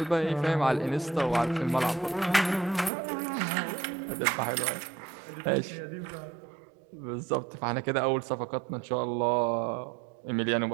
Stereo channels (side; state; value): left; drops out; at 2.9 s